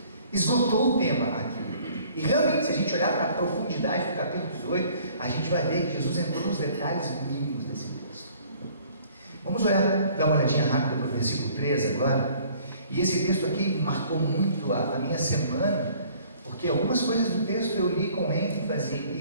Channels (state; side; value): inverted; both; correlation -0.56